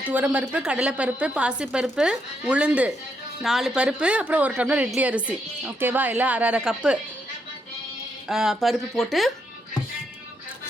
துவரம்பருப்பு, கடலைப்பருப்பு, பாசிப்பருப்பு, உளுந்து 4 பருப்பு, அப்புறம் 1 டம்ளர் இட்லி அரிசி. ஓகேவா? எல்லாம் அரை கப்பு பருப்பு போட்டு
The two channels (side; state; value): both; normal; correlation 0.78